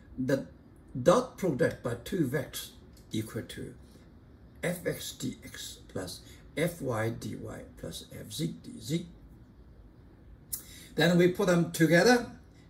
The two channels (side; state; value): both; identical; correlation 1.00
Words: the dot product by two vectors equal to fx dx plus fy dy plus fz dz. Then we put them together,